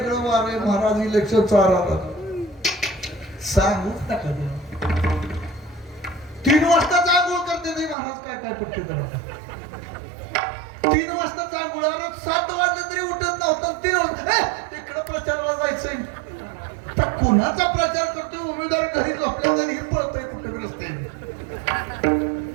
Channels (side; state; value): left; drops out; at 8.0 s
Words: वार आहे महाराज. इलेक्शन चालू सांगूच नका. 3 वाजता आंघोळ करते नाही महाराज. काय काय पट्टी करा. 3 वाजता आंघोळ. 7 वाजले तरी उठत नव्हतं. 3 वाजता तिकडं प्रचाराला जायचंय. तर कुणाचा प्रचार करतो? उमेदवार घरी झोपल्या तरी पळतोय कुठे रस्त्याने.